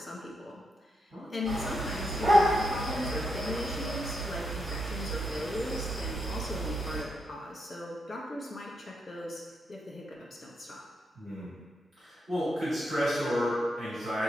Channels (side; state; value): both; normal; correlation 0.82